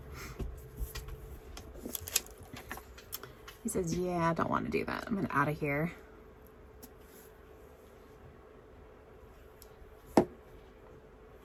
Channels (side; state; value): both; identical; correlation 1.00